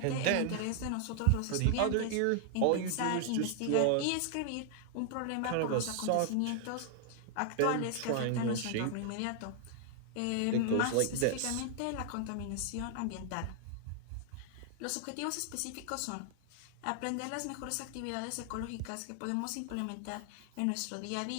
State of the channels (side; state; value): both; different; correlation 0.00